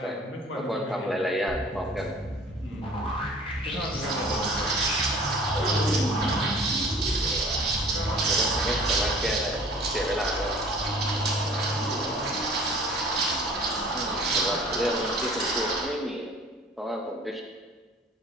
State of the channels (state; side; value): normal; both; correlation 0.49